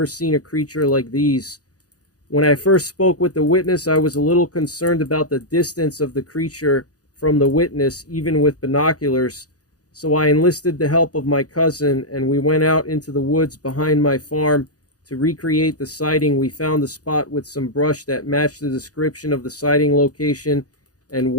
seen a creature like these. When I first spoke with the witness, I was a little concerned about the distance of the creature from the witness, even with binoculars, so I enlisted the help of my cousin, and we went out into the woods behind my farm to recreate the sighting. We found a spot with some brush that matched the description of the sighting location and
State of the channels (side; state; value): right; late; 0.67 ms